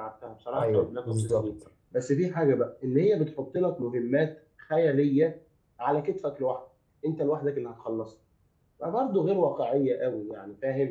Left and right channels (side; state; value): both; identical; correlation 1.00